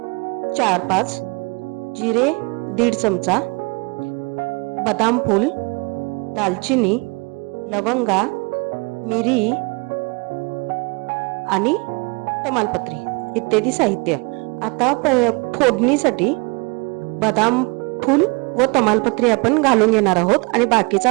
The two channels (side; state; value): left; quieter; 30.1 dB